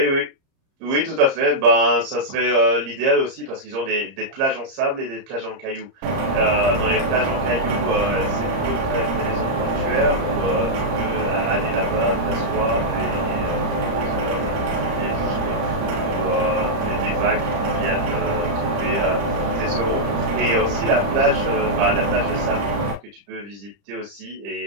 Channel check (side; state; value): left; late; 30 ms